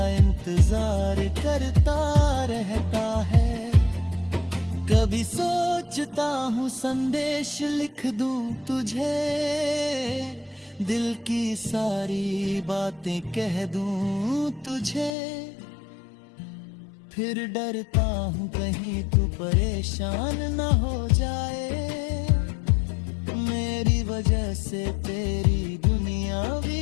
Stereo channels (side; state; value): right; drops out; at 15.2 s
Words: इंतजार करता रहता है। कभी सोचता हूँ संदेश लिख दूं तुझे, दिल की सारी बातें कह दूं तुझे। फिर डरता हूँ कहीं तू परेशान न हो जाए, मेरी वजह से तेरी दुनिया